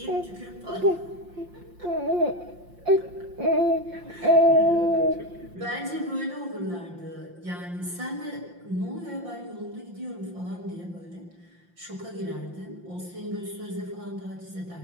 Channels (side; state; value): left; late; 5.7 ms